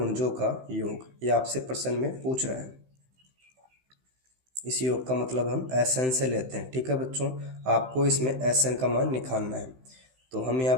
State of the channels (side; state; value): left; late; 15 ms